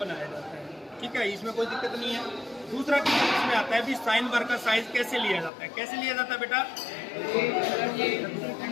जाता है, ठीक है, इसमें कोई दिक्कत नहीं है। दूसरा इसमें आता है भी साइन बार का साइज कैसे लिया जाता है। कैसे लिया जाता है बेटा,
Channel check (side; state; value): right; drops out; at 5.5 s